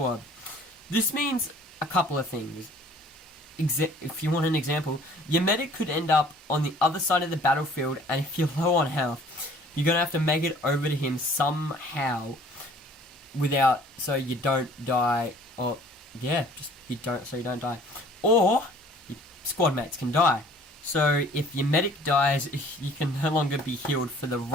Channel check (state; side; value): normal; both; correlation 0.53